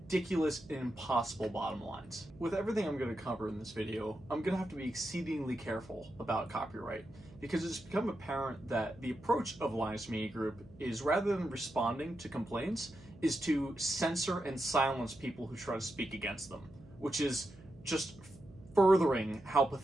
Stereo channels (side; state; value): right; noise; hum, 22 dB below the sound